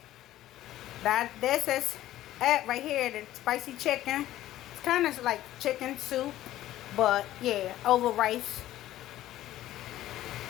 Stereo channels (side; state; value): right; quieter; 14.1 dB